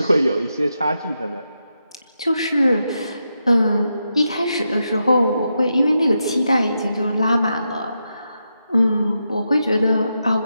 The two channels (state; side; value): inverted; both; correlation -0.86